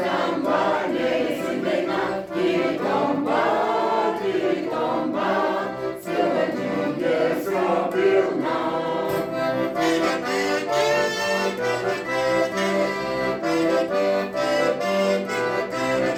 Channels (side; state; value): both; identical; correlation 1.00